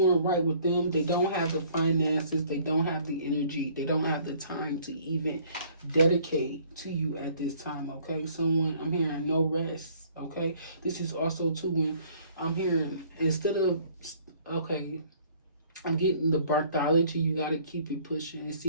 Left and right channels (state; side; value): inverted; both; correlation -0.58